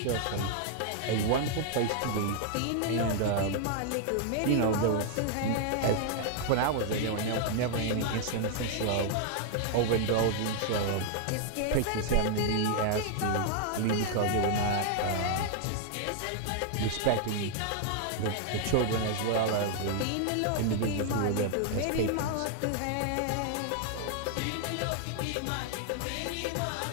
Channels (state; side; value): different; both; correlation 0.00